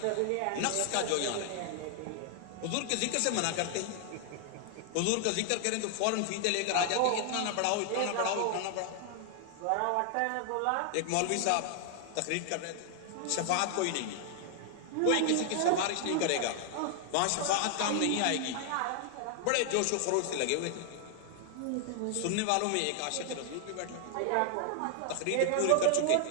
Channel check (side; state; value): both; different; correlation 0.00